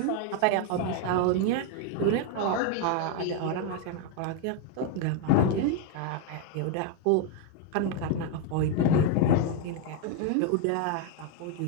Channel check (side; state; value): both; different; correlation 0.01